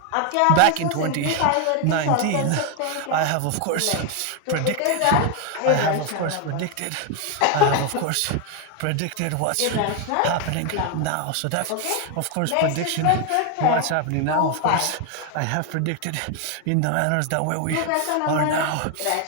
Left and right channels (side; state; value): both; different; correlation 0.01